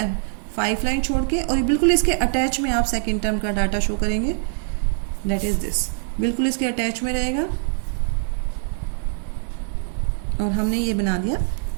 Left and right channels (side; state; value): left; silent; digital silence